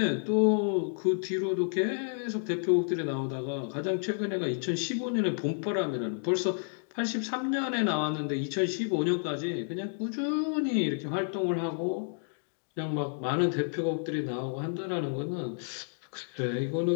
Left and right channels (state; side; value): silent; right; digital silence